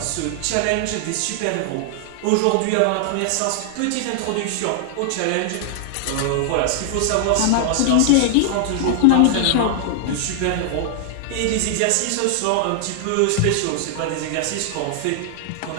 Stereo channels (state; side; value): different; both; correlation -0.01